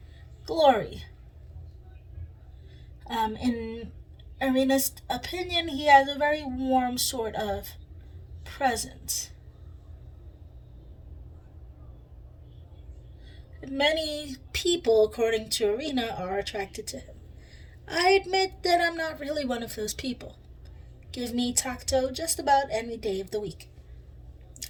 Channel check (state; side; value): identical; both; correlation 1.00